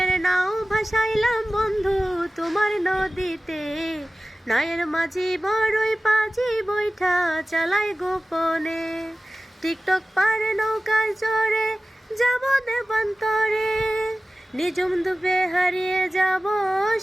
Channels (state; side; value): normal; both; correlation 0.96